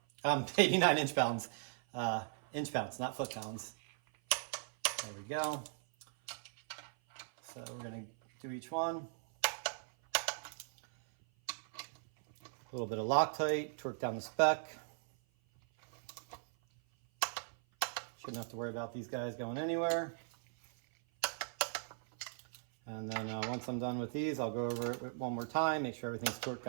89 inch-pounds. Inch-pounds, not foot-pounds. There we go. So we're going to do each one. A little bit of Loctite, torque down the spec. Shouldn't have to worry about these guys going anywhere. And then once I'm done with these, I'll go over it one more time, make sure everything's torqued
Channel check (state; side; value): silent; left; 52 dB below the other